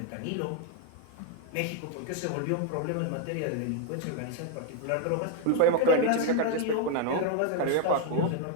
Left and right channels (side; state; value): both; different; correlation 0.00